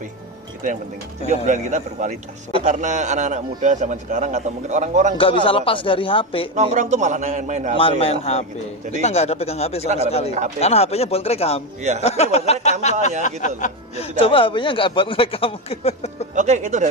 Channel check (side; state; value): both; normal; correlation 0.14